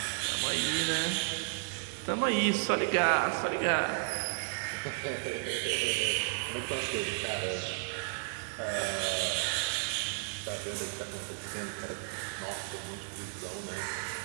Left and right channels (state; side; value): silent; left; 56 dB below the other